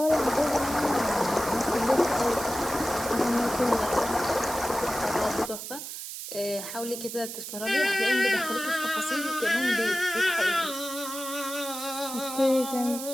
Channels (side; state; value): right; noise; hiss, 8 dB below the sound